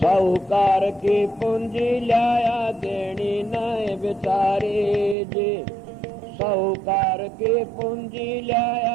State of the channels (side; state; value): left; drops out; at 5.2 s